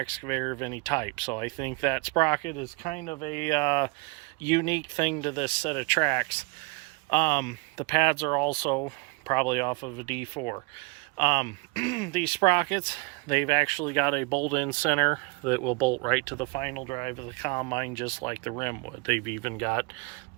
of any type. So I think that sprocket is kind of a unique thing to this set of tracks. The pads are also probably off of a D4. These sprockets, they've actually got a bolt-in center that will bolt right to the final drive of the combine, just like the rim would. They've even got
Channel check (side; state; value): left; quieter; 29.1 dB